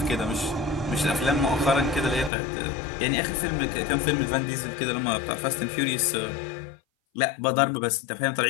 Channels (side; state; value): right; drops out; at 2.3 s